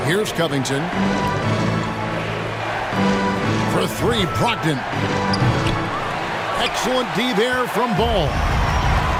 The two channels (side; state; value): both; identical; correlation 1.00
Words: Here's Covington. For 3, Brogdon. Excellent D there from Ball.